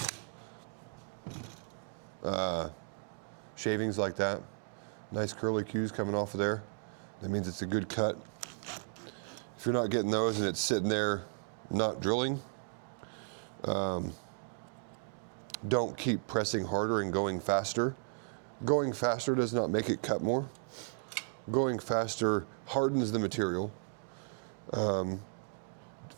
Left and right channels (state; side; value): silent; left; 54 dB below the other